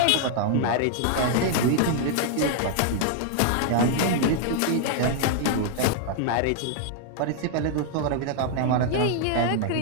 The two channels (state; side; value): different; both; correlation 0.00